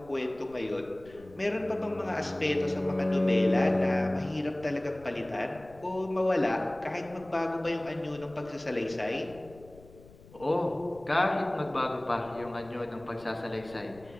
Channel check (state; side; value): noise; left; rumble, 22 dB below the sound